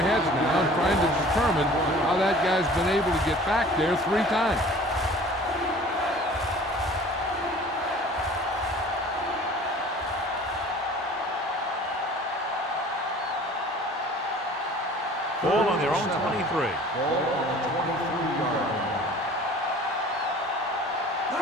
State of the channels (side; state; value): both; normal; correlation 0.46